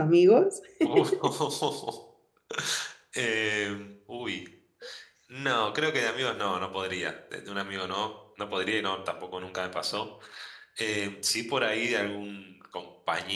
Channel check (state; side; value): identical; both; correlation 1.00